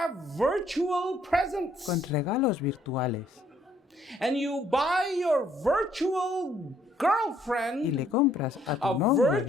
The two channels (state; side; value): normal; both; correlation 0.66